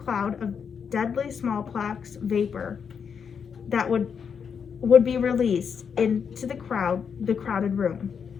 of deadly smallpox vapor that would be released into the crowded room.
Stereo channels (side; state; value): right; quieter; 6.8 dB